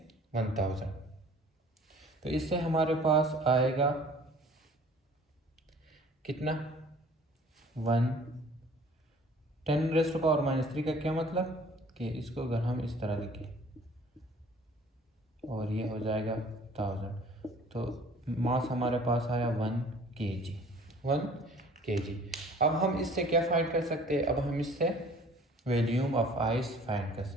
1000। तो इससे हमारे पास आएगा कितना, 10⁻³ का क्या मतलब कि इसको अगर हम इस तरह लिखें और ये हो जाएगा 1000, तो मास हमारे पास आया 1 kg। 1 kg। अब हम इससे क्या फाइंड कर सकते हैं, अब हम इससे वॉल्यूम ऑफ आइस फाइंड कर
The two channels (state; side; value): normal; both; correlation 0.51